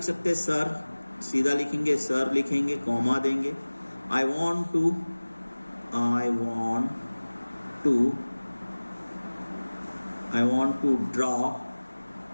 सकते हैं सर, सीधा लिखेंगे सर, लिखेंगे, कॉमा देंगे। I want to draw,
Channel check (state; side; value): inverted; both; correlation -1.00